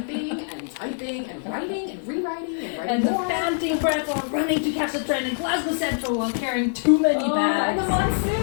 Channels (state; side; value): silent; right; digital silence